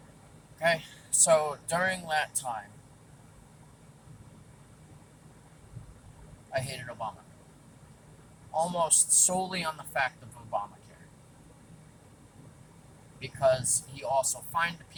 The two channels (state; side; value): identical; both; correlation 1.00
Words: Okay, so during that time, I hated Obama. Almost solely on the fact of Obamacare. Because he also fined